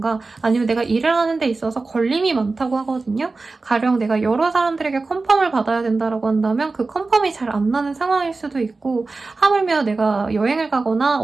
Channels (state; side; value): quieter; left; 3.7 dB